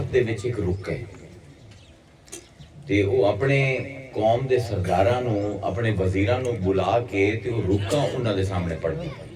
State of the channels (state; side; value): identical; both; correlation 1.00